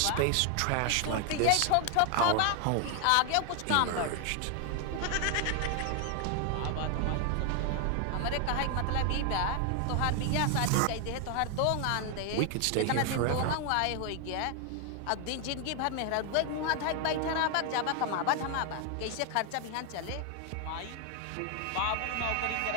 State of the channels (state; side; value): different; both; correlation 0.01